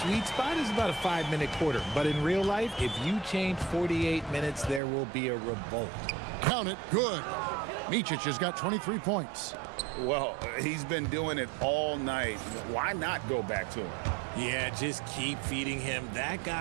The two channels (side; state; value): left; drops out; at 4.8 s